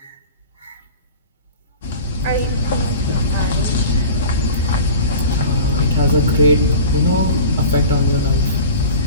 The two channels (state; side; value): inverted; both; correlation -0.37